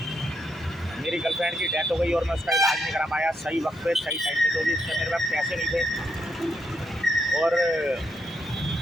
मेरी गर्लफ्रेंड की डेथ हो गई और मैं उसका इलाज नहीं करा पाया सही वक्त पे, सही टाइम पे, क्योंकि इससे मेरे पास पैसे नहीं थे। और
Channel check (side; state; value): both; normal; correlation 0.79